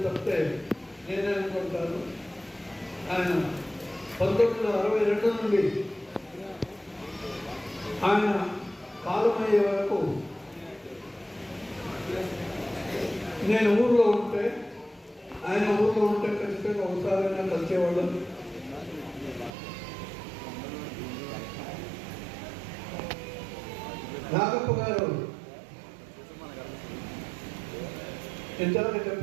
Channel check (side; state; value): left; drops out; at 19.5 s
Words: తప్పితే నేనే అనుకుంటాను. ఆయన 1962 నుండి ఆయన కాలమయ్యే వరకు నేను ఊళ్ళో ఉంటే, ఆయన ఊళ్ళో ఉంటే ఖచ్చితంగా ఒకసారైనా కలిసేవాళ్ళం. నాగప్ప గారు ఇంతవరకు